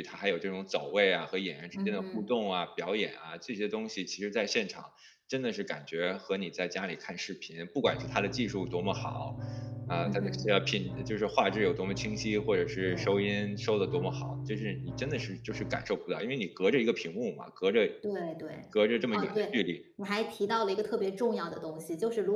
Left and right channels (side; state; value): both; identical; correlation 1.00